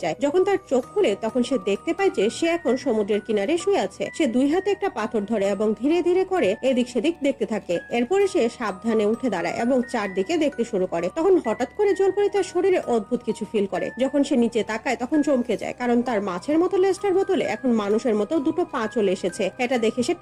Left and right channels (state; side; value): identical; both; correlation 1.00